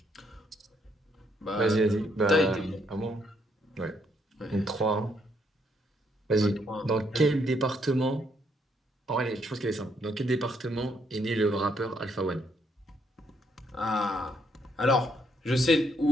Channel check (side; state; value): both; normal; correlation 0.72